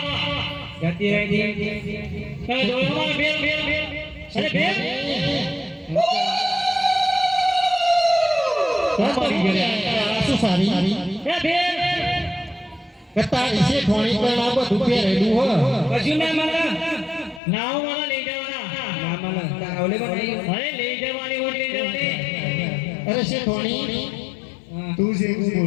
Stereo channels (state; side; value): drops out; right; at 17.4 s